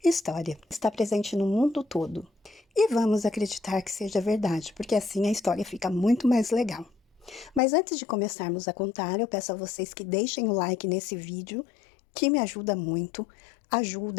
história. Está presente no mundo todo. E vamos acreditar que seja verdade, porque assim a história fica muito mais legal. Mas antes de começarmos a contar, eu peço a vocês que deixem o like nesse vídeo, que me ajuda muito.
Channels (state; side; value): drops out; right; at 7.6 s